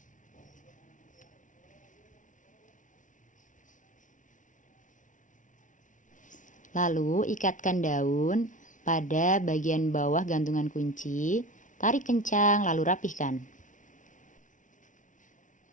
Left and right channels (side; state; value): right; late; 0.37 ms